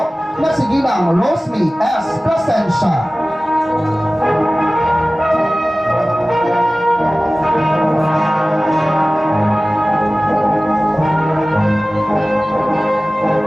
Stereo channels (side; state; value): both; normal; correlation 0.97